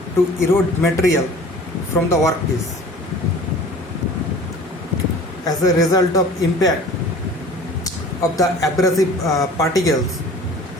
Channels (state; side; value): normal; both; correlation 0.45